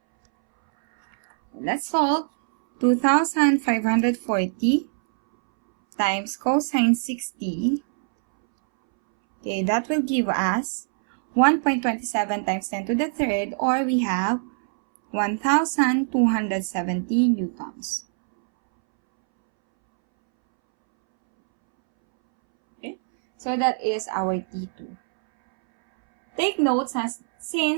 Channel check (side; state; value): left; silent; 63 dB below the other